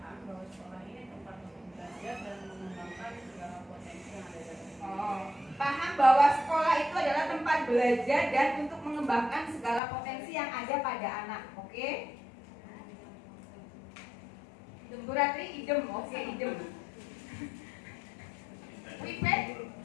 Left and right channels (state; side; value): drops out; right; at 9.8 s